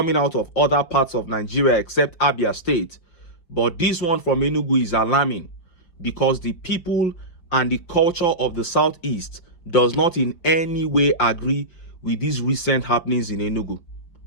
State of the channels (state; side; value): late; right; 5.8 ms